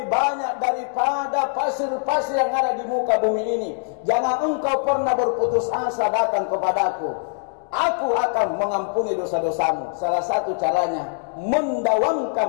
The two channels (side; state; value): right; silent; digital silence